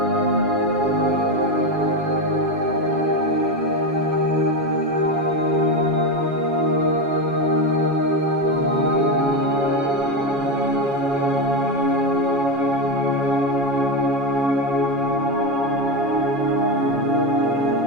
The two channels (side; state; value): left; late; 7.2 ms